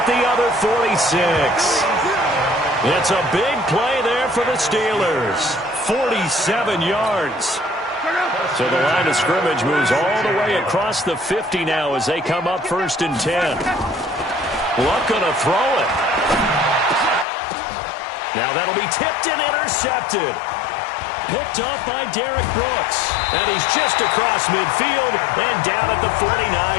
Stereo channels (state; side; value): drops out; right; at 17.2 s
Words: the other 46. It's a big play there for the Steelers. 47 yards. So the line of scrimmage moves all the way across the 50 now as they come up 1st and 10. Luck gonna throw it. Now that'll be tipped and intercepted. Picked off by Derek Brooks. And he's just across midfield and down at the